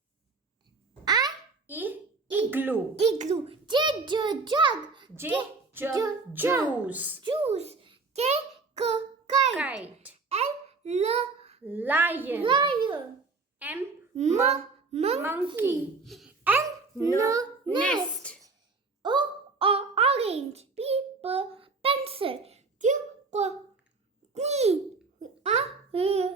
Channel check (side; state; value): left; quieter; 4.0 dB